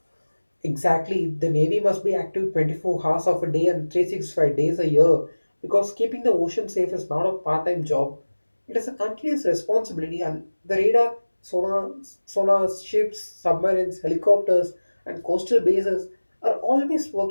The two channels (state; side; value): inverted; both; correlation -1.00